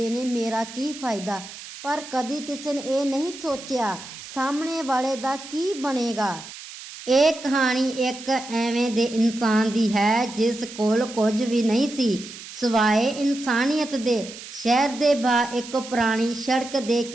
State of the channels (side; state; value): right; noise; hiss, 14 dB below the sound